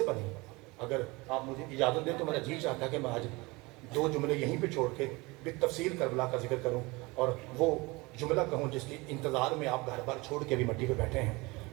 بنی؟ اگر آپ مجھے اجازت دیں تو میرا جی چاہتا ہے کہ میں آج 2 جملے یہیں پہ چھوڑ کے بالتفصیل کربلا کا ذکر کروں اور وہ جملہ کہوں جس کے انتظار میں آپ گھر بار چھوڑ کے بھی مٹی پہ بیٹھے ہیں۔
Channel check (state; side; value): quieter; left; 24.2 dB